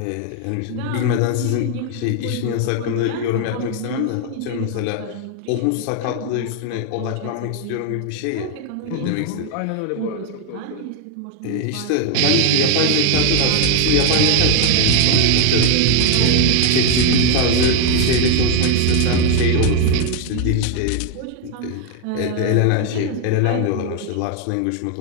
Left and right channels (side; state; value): both; different; correlation 0.01